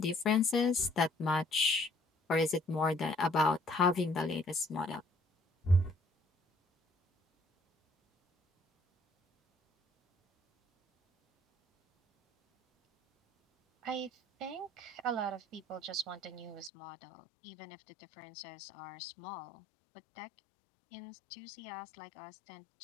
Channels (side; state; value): right; drops out; at 16.7 s